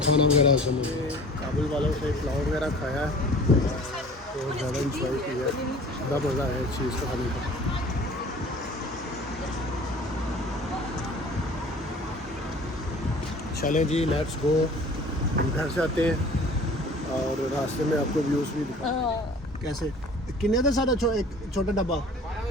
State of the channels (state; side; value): normal; both; correlation 0.46